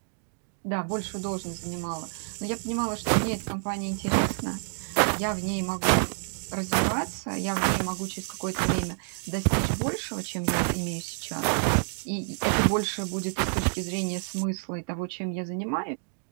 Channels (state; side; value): silent; left; digital silence